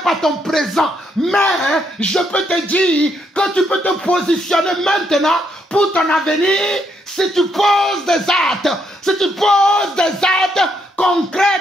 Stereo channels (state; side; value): normal; both; correlation 0.75